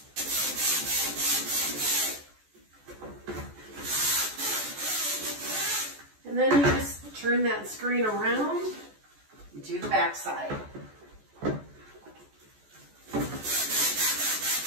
And then you just turn that screen around and do the back side.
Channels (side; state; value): left; late; 14 ms